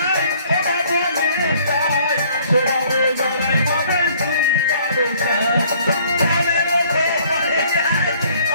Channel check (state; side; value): inverted; both; correlation -0.59